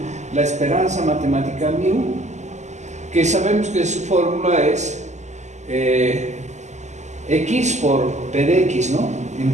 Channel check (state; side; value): late; left; 0.34 ms